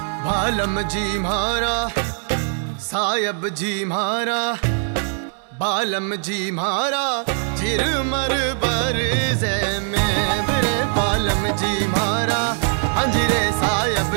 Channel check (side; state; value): left; silent; 56 dB below the other